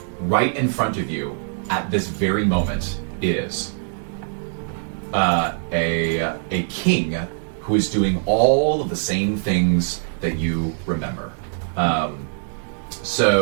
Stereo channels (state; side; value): silent; left; digital silence